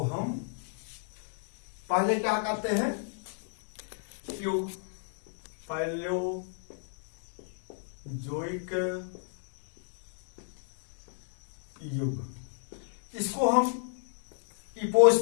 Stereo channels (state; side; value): silent; right; 57 dB below the other